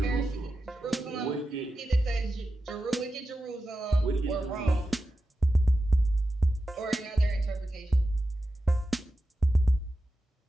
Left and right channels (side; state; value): both; normal; correlation 0.91